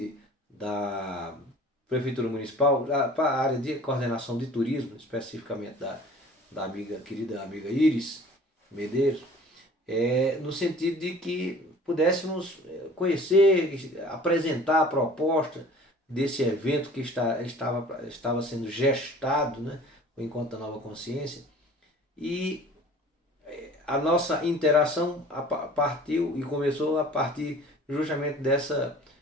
da Prefeitura Municipal para a área de coordenação de turismo, especificamente da querida amiga Iris Medeiros, no sentido de que pudéssemos conhecer, apresentar a proposta desse evento que estava sendo gestado, né, o Encontro da Nova Consciência, e a nossa interação partiu e começou a partir justamente dessa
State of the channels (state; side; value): normal; both; correlation 0.47